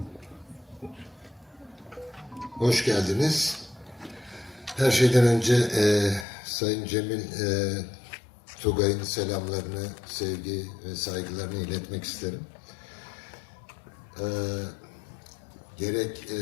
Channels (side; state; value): right; drops out; at 6.2 s